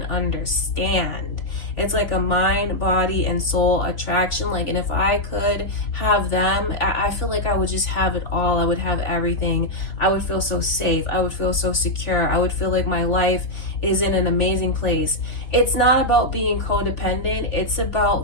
understand. It's like a mind, body, and soul attraction. Like, and if I could have them, I feel like I would just have it all. I would have everything. I would feel so safe. I would feel so secure. I would feel like my life is in an amazing place. It's not about being codependent. It's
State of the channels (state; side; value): late; right; 3.4 ms